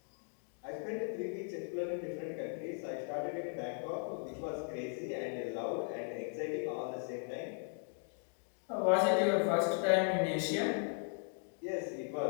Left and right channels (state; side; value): silent; right; 53 dB below the other